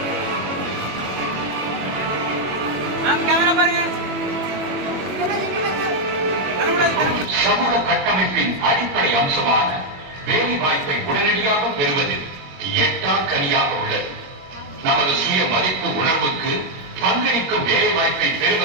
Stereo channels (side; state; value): left; late; 21 ms